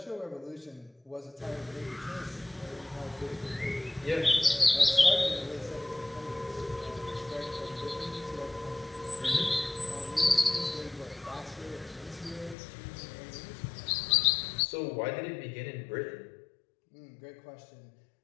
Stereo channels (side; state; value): right; drops out; at 12.6 s